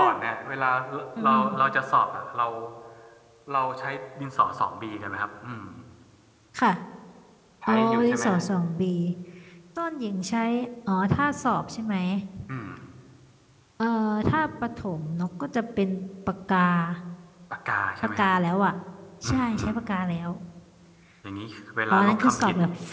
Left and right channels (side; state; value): both; identical; correlation 1.00